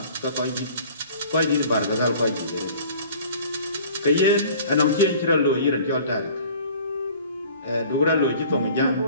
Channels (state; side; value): inverted; both; correlation -0.48